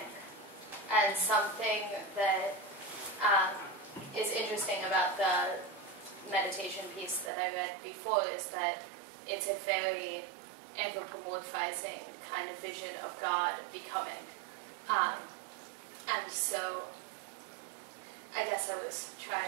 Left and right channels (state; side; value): drops out; left; at 7.3 s